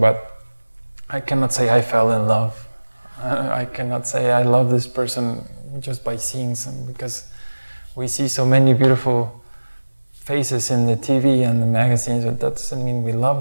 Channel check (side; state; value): both; inverted; correlation -1.00